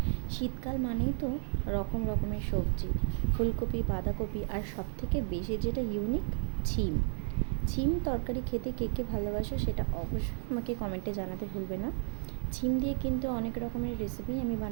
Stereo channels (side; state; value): left; silent; digital silence